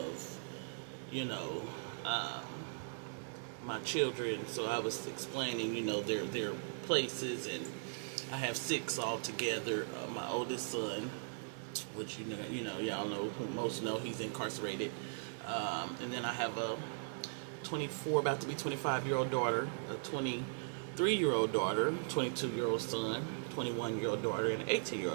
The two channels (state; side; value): silent; left; digital silence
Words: you know, um, my children. So I was explaining, their places, and I have six altogether. My oldest son, which y'all know, who most know, he's incarcerated, and then I have a 24, about to be 25-year-old daughter, a 23-year-old daughter, 22-year-old son, 21-year-old daughter, and an